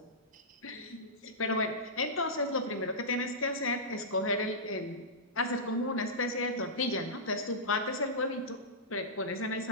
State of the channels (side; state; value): both; normal; correlation -0.15